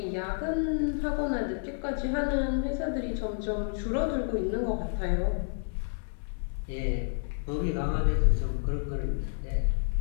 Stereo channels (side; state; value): right; silent; 58 dB below the other